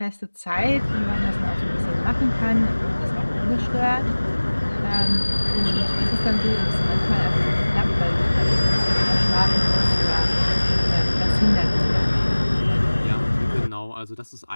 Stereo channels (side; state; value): both; inverted; correlation -1.00